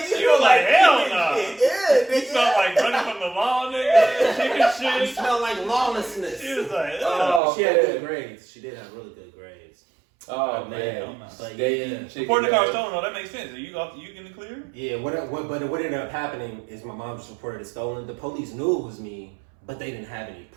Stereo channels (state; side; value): drops out; left; at 7.4 s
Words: You were like, hell no. Yeah, You smell like running from the law, nigga. Chicken It shit. smelled like lawlessness. She was like, Oh, She had man. good grades. She did have really good grades. Oh, man. man. But Steak, yeah. chicken, Reporting the car man. stolen, though, that makes sense. Are you in the clear? Yeah, but what ended up happening is my mom just reported it stolen. The police knew it was me, but they didn't have any